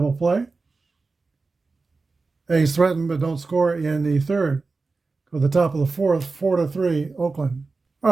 play. A's threatened but don't score in the third. Go to the top of the fourth, 4-3 Oakland. All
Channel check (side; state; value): left; quieter; 4.0 dB